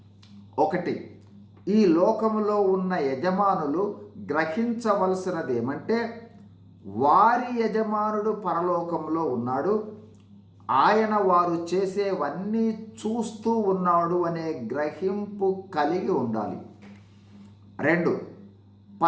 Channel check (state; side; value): identical; both; correlation 1.00